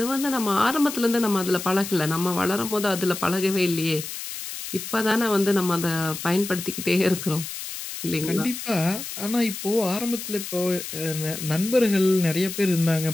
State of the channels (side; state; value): left; noise; hiss, 8 dB below the sound